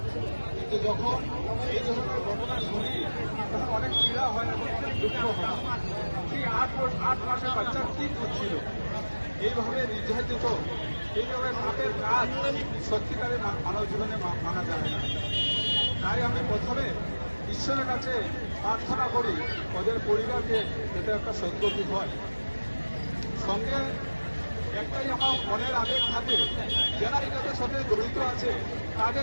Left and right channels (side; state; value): both; inverted; correlation -1.00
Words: কিন্তু যখন এই ধরনের ঘটনা শুনি তখন অনেক পীড়া হয় এবং দুঃখ হয়। সেই 8 মাসের বাচ্চা কি করছিল, এইভাবে নির্যাতিত, এইভাবে পাপের কাজ সত্যিকারে মানব জীবনে মানা যায় না। তাই আমি প্রথমে ঈশ্বরের কাছে প্রার্থনা করি ওদের পরিবারকে এটা একটা সদ্গতি হয়। সঙ্গে একটাই আমার মনের আবেগ থাকে, যারা এটাদের সাথে জড়িত আছে